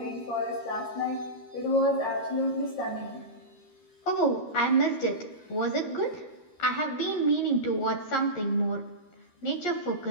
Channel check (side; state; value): right; late; 13 ms